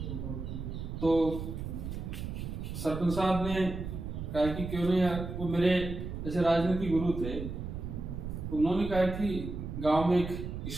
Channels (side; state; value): right; noise; rumble, 6 dB below the sound